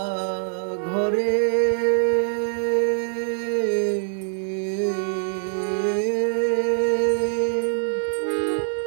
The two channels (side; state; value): left; silent; digital silence